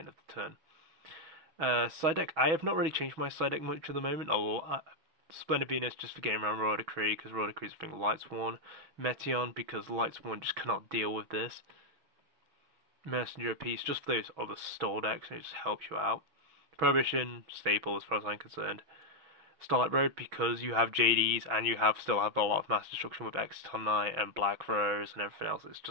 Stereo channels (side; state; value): left; late; 6.1 ms